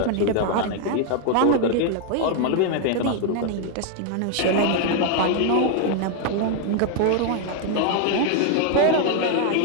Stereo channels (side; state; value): both; different; correlation 0.00